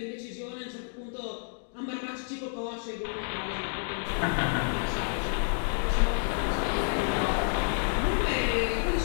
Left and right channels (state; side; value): silent; right; 58 dB below the other